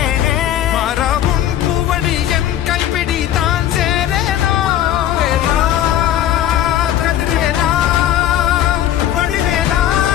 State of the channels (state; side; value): quieter; right; 11.6 dB